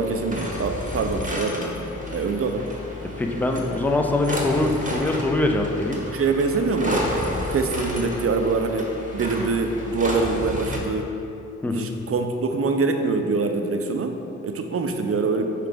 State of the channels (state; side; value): normal; both; correlation 0.36